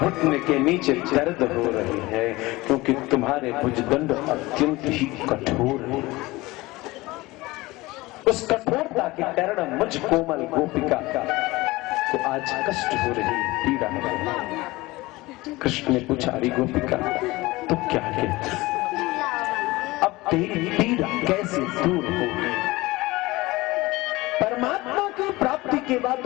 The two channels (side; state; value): right; quieter; 20.6 dB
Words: के नीचे दर्द हो रही है, क्योंकि तुम्हारे भुजदंड अत्यंत ही कठोर है। उस कठोरता के कारण मुझ कोमल गोपिका को आज कष्ट हो रही, पीड़ा हो रही। कृष्ण ने पूछा, अरे गोपिका तो क्या कहती, अब तेरी पीड़ा कैसे दूर होगी? परमात्मा की प्राप्ति के बाद,